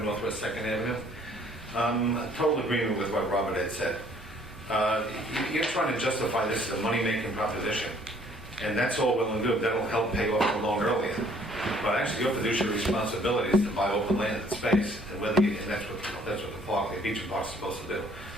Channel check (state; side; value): normal; both; correlation 0.60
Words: Northwest 2nd Avenue. Total agreement with what Robert had said. You're trying to justify this as a money-making proposition, and that's all well and good. That'll help pay off the loan earlier. But actually, your fiduciary responsibility is to buy open land and space, and that's what the park, the beach and park, is supposed to do.